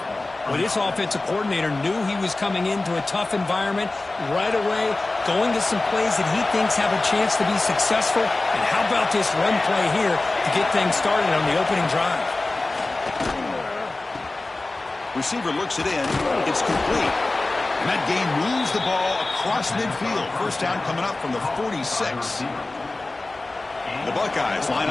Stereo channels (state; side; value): quieter; right; 3.1 dB